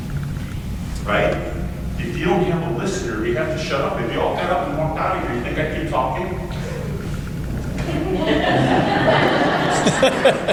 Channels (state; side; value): identical; both; correlation 1.00